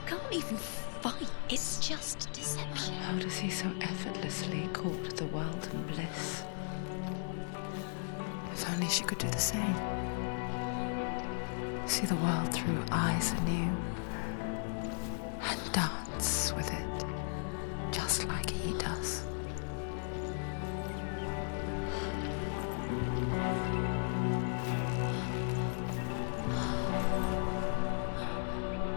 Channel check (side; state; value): right; silent; digital silence